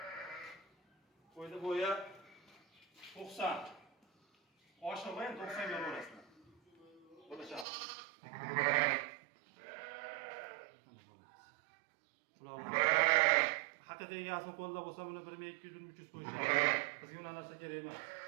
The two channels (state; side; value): drops out; left; at 7.7 s